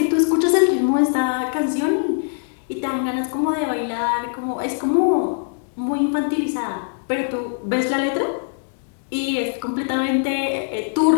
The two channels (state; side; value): silent; right; digital silence